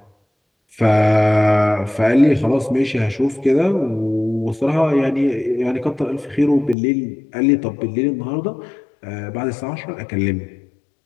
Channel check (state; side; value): drops out; right; at 6.8 s